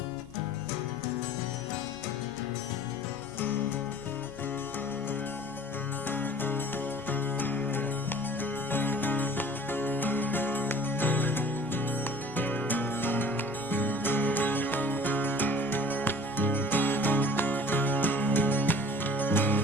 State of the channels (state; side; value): normal; both; correlation 0.48